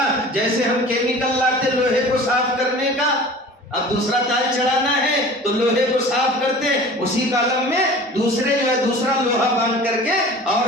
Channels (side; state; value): both; normal; correlation 0.42